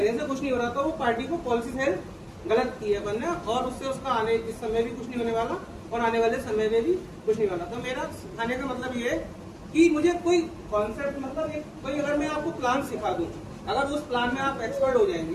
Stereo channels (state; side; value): identical; both; correlation 1.00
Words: से कुछ नहीं हो रहा। तो वो पार्टी को पॉलिसी सेल गलत की है बनने, और उससे उसका आने इस समय भी कुछ नहीं होने वाला और आने वाले समय में भी कुछ नहीं वाला। तो मेरा सिखाने का मतलब ये है कि मुझे कोई कॉन्सेप्ट, मतलब कोई अगर मैं आपको प्लान सिखा दूं, अगर उस प्लान में आप एक्सपर्ट हो